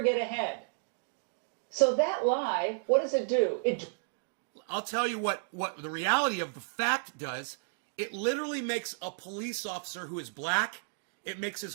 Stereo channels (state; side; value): silent; left; digital silence